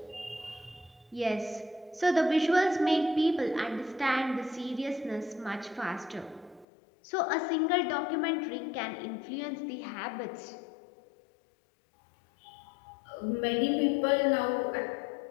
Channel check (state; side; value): drops out; right; at 6.7 s